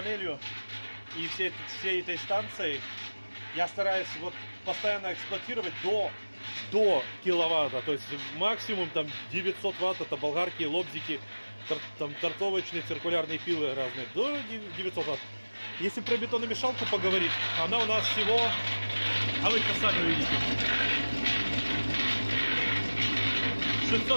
и всей этой станцией я стараюсь вот постоянно эксплуатировать до киловатта. То есть максимум там 900 ватт, это болгарки, лобзики, там торцовочные, циркулярные пилы разные. До 900 ватт. Если про бетономешалку поговорить, она у нас всего, а вы это сами увидите,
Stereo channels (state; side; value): inverted; both; correlation -1.00